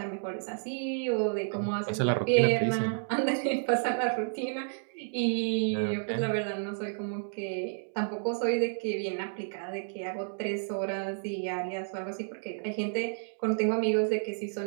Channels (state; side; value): silent; left; digital silence